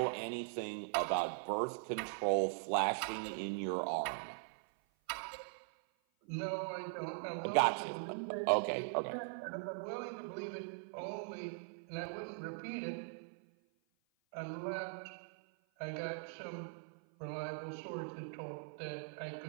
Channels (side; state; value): left; silent; 51 dB below the other